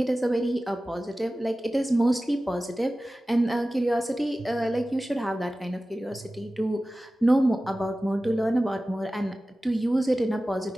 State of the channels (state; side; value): normal; both; correlation 0.96